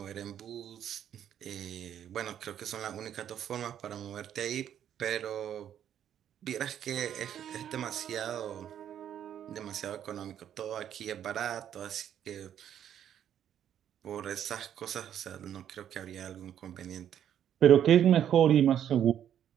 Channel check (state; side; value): quieter; left; 9.9 dB